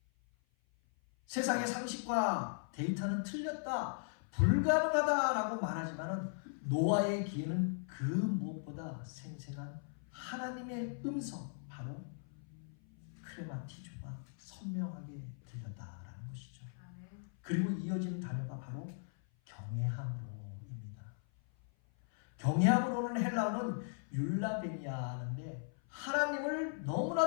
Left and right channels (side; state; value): right; silent; 52 dB below the other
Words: 세상의 상식과 데이터는 틀렸다, 불가능하다라고 말하지만은 노아의 귀에는 그 무엇보다 생생한 하나님의 음성, 바로 크레마티조가 선명하게 들렸다라는 것이죠. 그리고 이어지는 단어가 바로 경외함으로입니다. 경외함으로는 헬라어는 율라베니아인데 하나님을